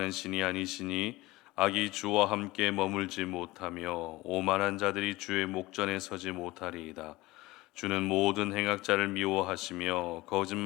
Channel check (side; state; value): right; quieter; 19.5 dB